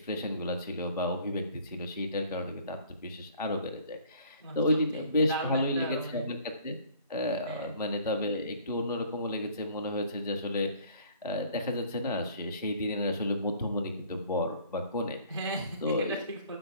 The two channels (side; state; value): both; inverted; correlation -0.54